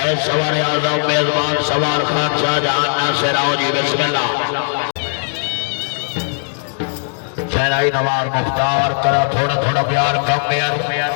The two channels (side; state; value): right; silent; digital silence